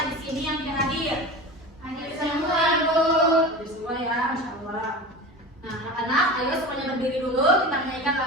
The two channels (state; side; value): normal; both; correlation 0.30